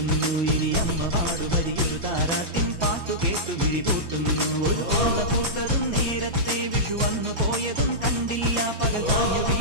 ഇനി അമ്മ പാടുമതിയൊരു താരാട്ടിൻ പാട്ടു കേട്ടു വിഴിപൂട്ടുന്നു. ഒരു ഓർമ്മ പൂത്തതും നേരത്തെ വിഷു വന്നു പോയതും കണ്ടില്ല. പകൽ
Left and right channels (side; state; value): left; late; 6.0 ms